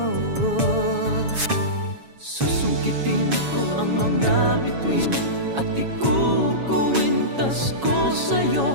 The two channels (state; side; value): late; left; 7.2 ms